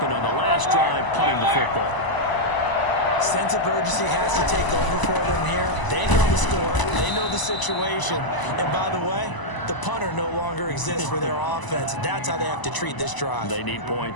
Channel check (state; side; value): late; right; 1.0 ms